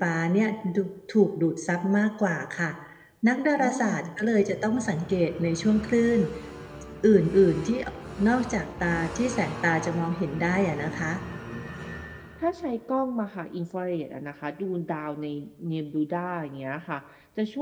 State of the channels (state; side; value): identical; both; correlation 1.00